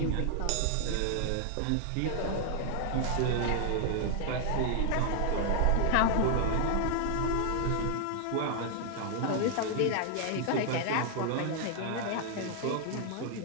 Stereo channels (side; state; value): both; different; correlation 0.00